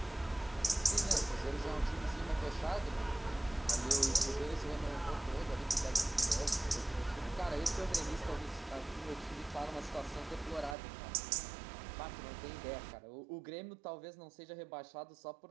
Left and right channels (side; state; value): left; drops out; at 10.8 s